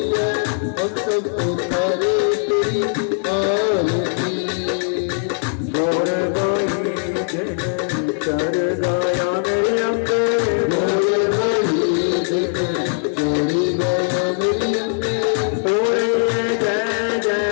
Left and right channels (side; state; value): right; silent; digital silence